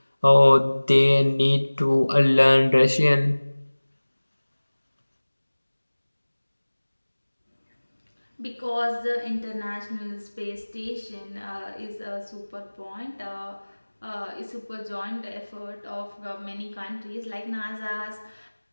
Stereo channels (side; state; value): both; inverted; correlation -1.00